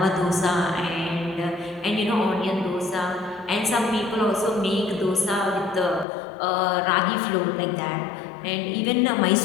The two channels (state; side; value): drops out; right; at 6.1 s